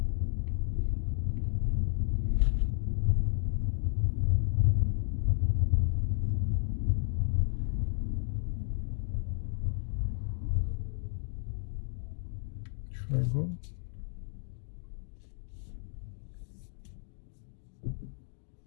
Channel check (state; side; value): silent; right; digital silence